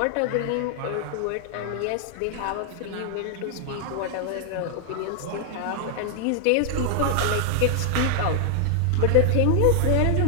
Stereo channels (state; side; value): different; both; correlation 0.00